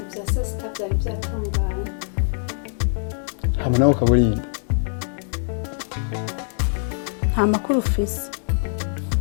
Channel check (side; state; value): right; silent; 63 dB below the other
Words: Hamana ukaburinda. Nta makuru ufise.